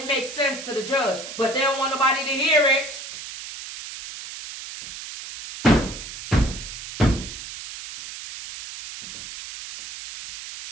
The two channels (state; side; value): noise; right; hiss, 11 dB below the sound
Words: makes sense to the judge. But they don't want nobody to hear it.